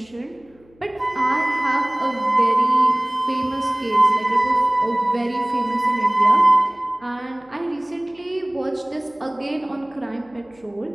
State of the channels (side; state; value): left; noise; hum, 30 dB below the sound